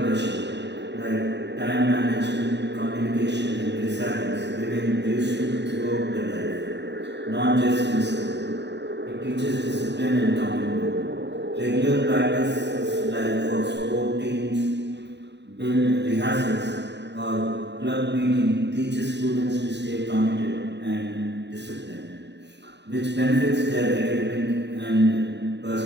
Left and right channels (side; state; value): left; late; 0.50 ms